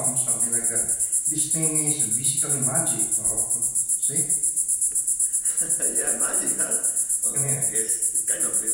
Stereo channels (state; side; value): identical; both; correlation 1.00